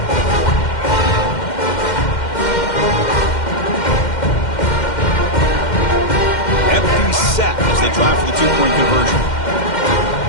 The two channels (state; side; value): late; right; 2.1 ms